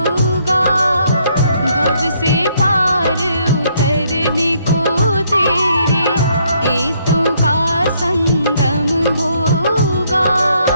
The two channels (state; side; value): inverted; both; correlation -0.69